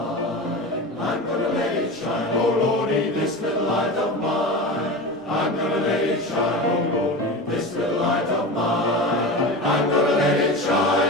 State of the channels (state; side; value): normal; both; correlation 0.28